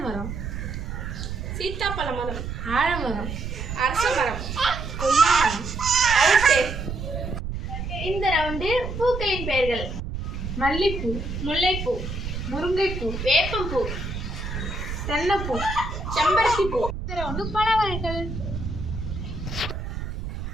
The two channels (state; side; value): noise; right; rumble, 6 dB below the sound